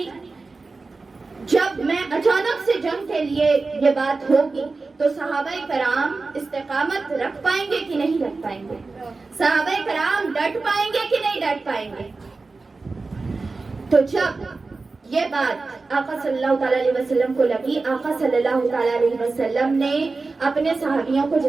جب میں اچانک سے جنگ کے لیے یہ بات ہوگی تو صحابہ کرام استقامت رکھ پائیں گے کہ نہیں رکھ پائیں گے، صحابہ کرام ڈٹ پائیں گے کہ نہیں ڈٹ پائیں گے۔ تو جب یہ بات آقا صلی اللہ تعالیٰ علیہ وسلم کو لگی، آقا صلی اللہ تعالیٰ علیہ وسلم نے اپنے صحابیوں کو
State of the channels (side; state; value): left; quieter; 3.9 dB